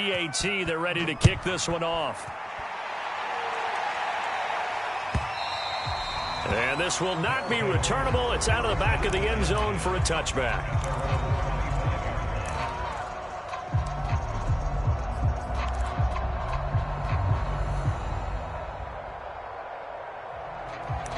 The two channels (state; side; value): identical; both; correlation 1.00